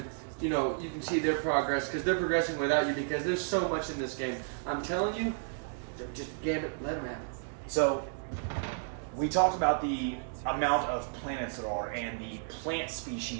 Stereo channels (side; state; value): left; silent; digital silence